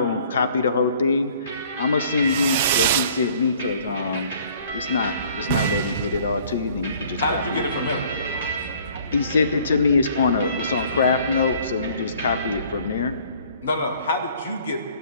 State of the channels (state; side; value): inverted; both; correlation -0.56